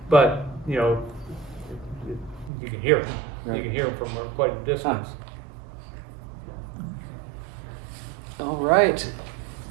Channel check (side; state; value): left; drops out; at 2.5 s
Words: but you can hear them. Right. You can hear them from quite a distance. All right.